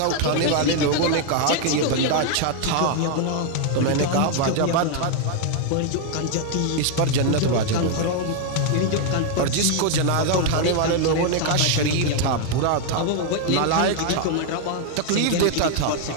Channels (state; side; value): different; both; correlation 0.00